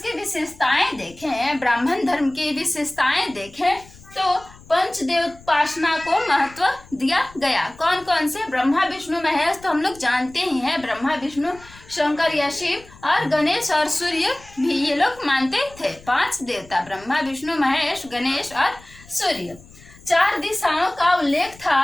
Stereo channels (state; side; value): noise; left; rumble, 23 dB below the sound